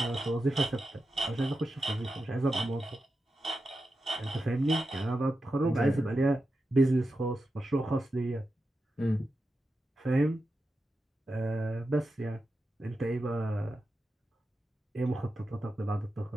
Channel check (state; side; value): normal; both; correlation 0.90